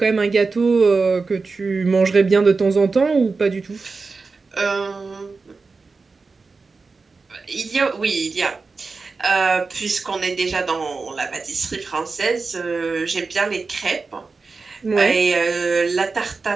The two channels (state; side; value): quieter; left; 4.2 dB